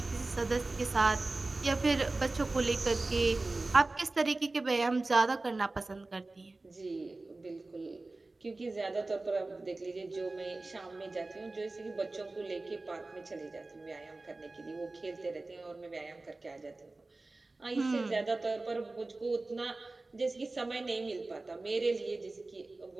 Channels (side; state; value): left; quieter; 3.2 dB